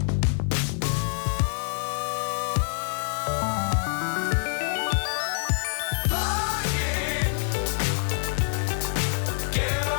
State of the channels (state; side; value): silent; right; 61 dB below the other